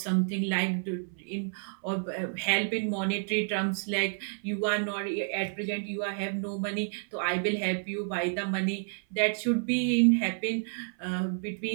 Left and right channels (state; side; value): silent; left; 58 dB below the other